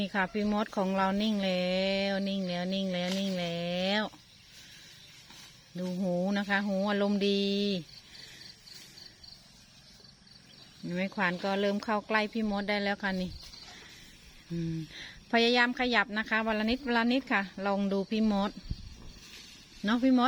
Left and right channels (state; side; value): identical; both; correlation 1.00